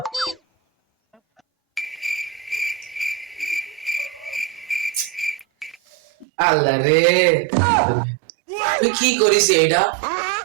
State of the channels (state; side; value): drops out; left; at 6.2 s